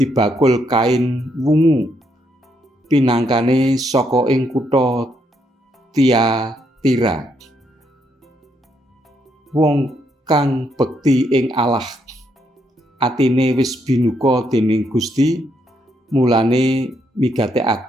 bakul kain wungu pinangkane saka ing kutha Tiatira. Wong kang bekti ing Allah, atine wis binuka dening Gusti, mulane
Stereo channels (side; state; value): both; normal; correlation 0.76